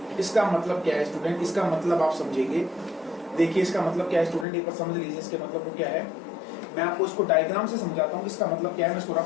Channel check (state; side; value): drops out; right; at 4.5 s